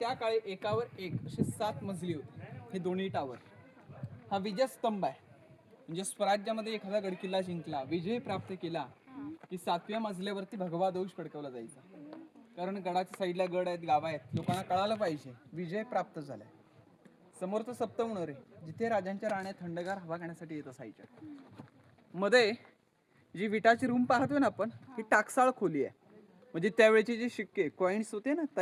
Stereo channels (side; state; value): both; identical; correlation 1.00